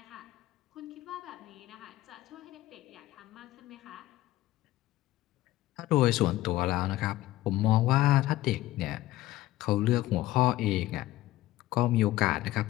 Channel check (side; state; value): right; quieter; 15.9 dB